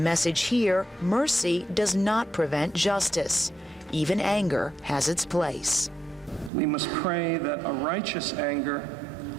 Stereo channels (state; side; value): drops out; left; at 6.5 s